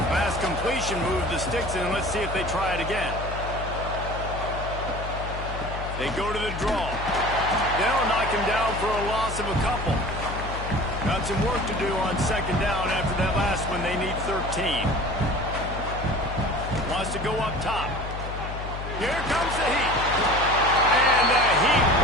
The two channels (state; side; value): noise; left; hum, 7 dB below the sound